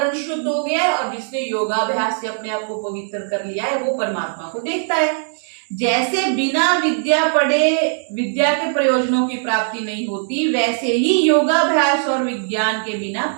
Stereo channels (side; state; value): left; silent; digital silence